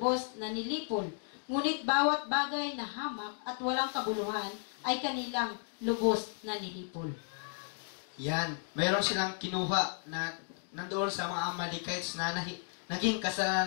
na nilipol, ngunit bawat bagay na hamak at walang kabuluhan ay kanilang lubos na nilipol. Yan, mayroon silang kinuha na nandoon sa mga Amalekites na naging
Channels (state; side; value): silent; right; 55 dB below the other